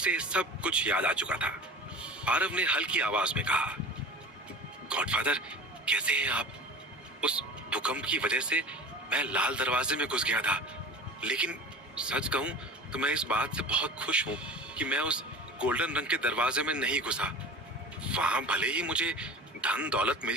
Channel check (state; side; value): normal; both; correlation 0.37